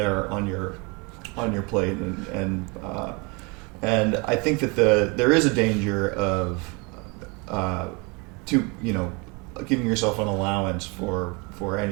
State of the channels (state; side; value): quieter; left; 29.7 dB